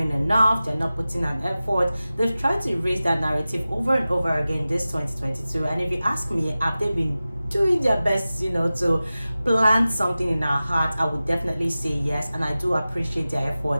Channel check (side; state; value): both; inverted; correlation -0.96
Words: enough, they're not putting an effort. They've tried to erase that narrative over and over again this 2022. And if you ask me, have they been doing their best, to plant something in our heart? I would definitely say yes, and I do appreciate their